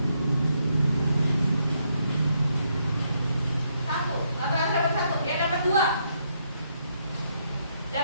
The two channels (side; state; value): both; inverted; correlation -0.76